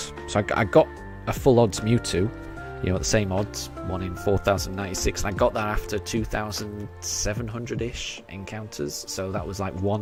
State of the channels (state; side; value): identical; both; correlation 1.00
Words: So I got a full odds Mewtwo, at the same odds, 1 in 4,096, and I got that after 2,700-ish encounters. So that was like